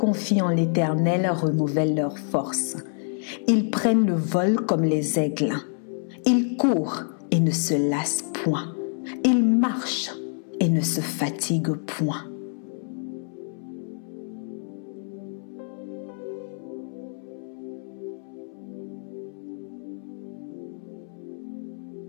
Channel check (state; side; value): silent; right; 60 dB below the other